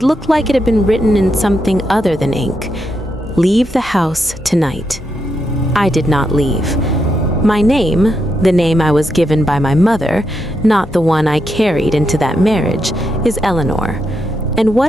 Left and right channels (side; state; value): both; normal; correlation 0.82